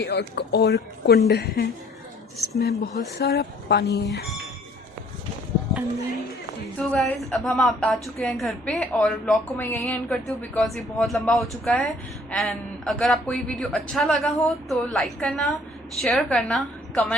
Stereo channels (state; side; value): normal; both; correlation 0.58